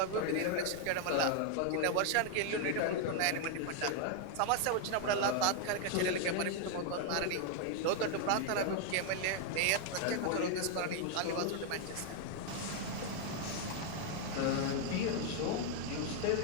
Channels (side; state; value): both; different; correlation 0.00